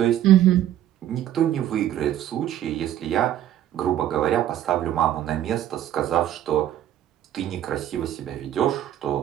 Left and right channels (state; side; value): quieter; left; 11.8 dB